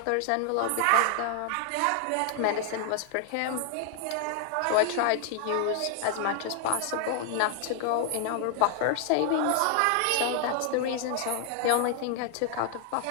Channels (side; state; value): both; different; correlation 0.00